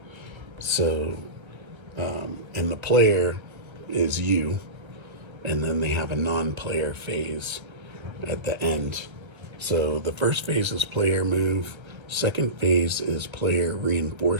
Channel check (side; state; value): left; late; 1.3 ms